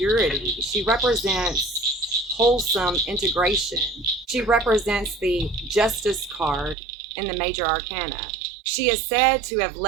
She represents wholesome integration. She represents the justice card in the major arcana. She is said to have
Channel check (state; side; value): drops out; left; at 6.8 s